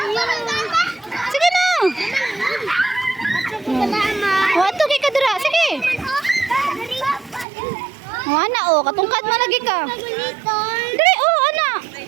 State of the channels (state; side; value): drops out; left; at 7.5 s